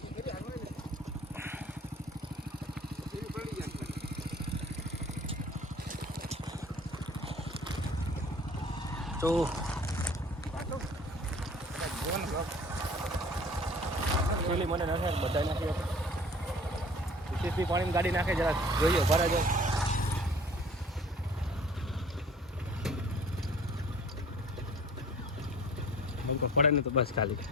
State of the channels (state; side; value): normal; both; correlation 0.49